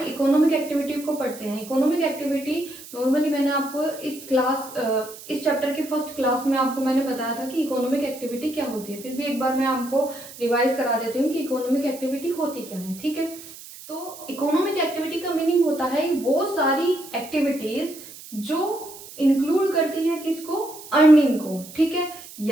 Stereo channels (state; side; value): noise; right; hiss, 16 dB below the sound